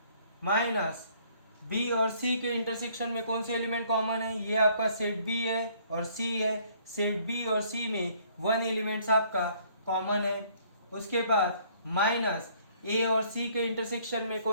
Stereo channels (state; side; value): inverted; both; correlation -0.62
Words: माइनस बी और सी के इंटरसेक्शन में कौन से एलिमेंट कॉमन है, ये आपका सेट बी है और सी है, सेट बी और सी में 1 एलिमेंट्स आपका कॉमन है। उसके बाद माइनस ए और सी के इंटरसेक्शन में